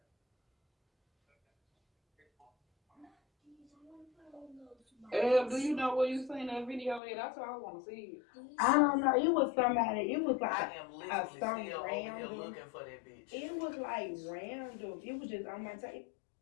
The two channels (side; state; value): right; drops out; at 7.0 s